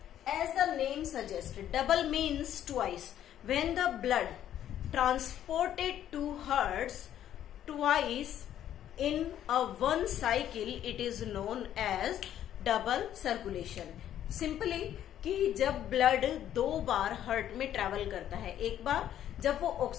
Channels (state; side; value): quieter; right; 11.1 dB